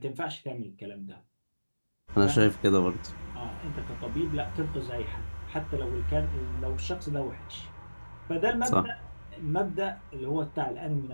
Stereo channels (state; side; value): inverted; both; correlation -1.00